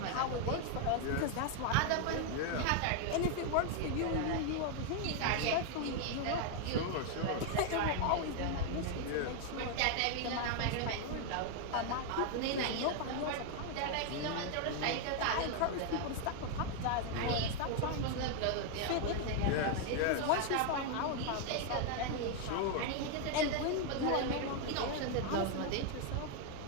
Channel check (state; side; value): different; both; correlation 0.00